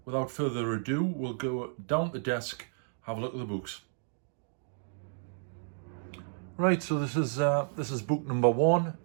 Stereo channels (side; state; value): left; silent; digital silence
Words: further ado, we'll go down the desk, have a look at the books. Right, so this is book number one,